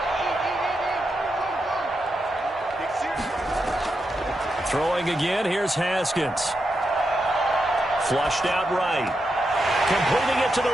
Throwing again, here's Haskins. Flushed out right. Completing it to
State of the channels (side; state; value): both; normal; correlation 0.86